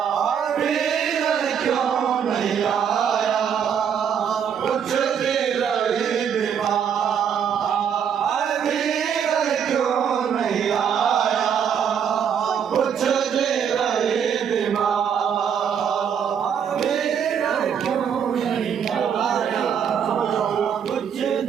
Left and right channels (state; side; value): quieter; left; 7.9 dB